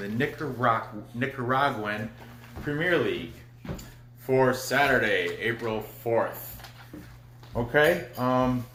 Nicaraguan Premier League for Saturday, April 4th. Okay,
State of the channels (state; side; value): identical; both; correlation 1.00